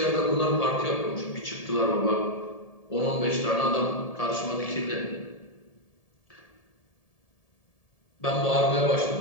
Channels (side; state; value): right; late; 1.7 ms